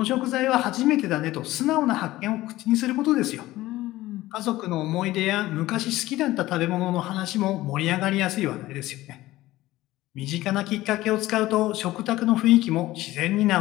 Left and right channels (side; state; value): right; quieter; 16.9 dB